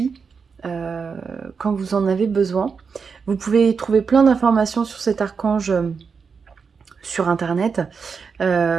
euh, quand vous en avez besoin. Vous pouvez trouver plein d'informations sur cet archange sur Internet.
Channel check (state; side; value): quieter; left; 5.6 dB